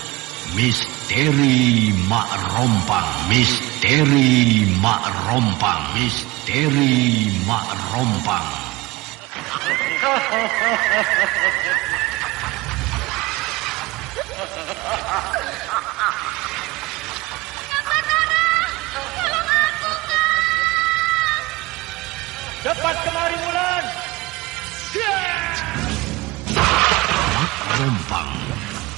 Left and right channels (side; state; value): left; quieter; 21.6 dB